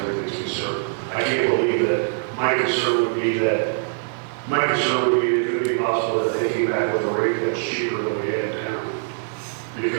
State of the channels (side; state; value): left; silent; digital silence